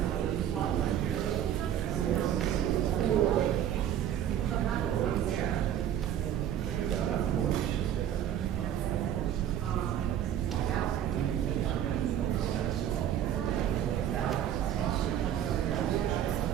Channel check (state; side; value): quieter; left; 10.5 dB